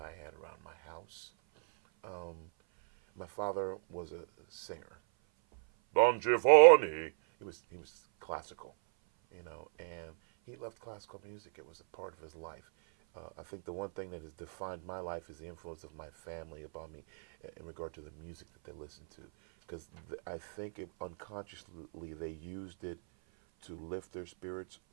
had around my house. Um, my father was a singer. Don Giovanni. He was classical, you know, and he loved classical music. It was a part of his life. I think the one thing that has defined my life is the influence of my family upon me in regard to the music that they listen to, because I think unconsciously they used it to lift their spirits,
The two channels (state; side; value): silent; left; 54 dB below the other